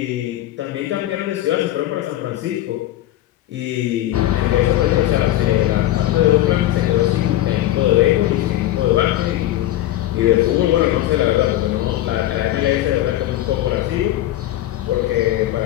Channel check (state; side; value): quieter; right; 14.1 dB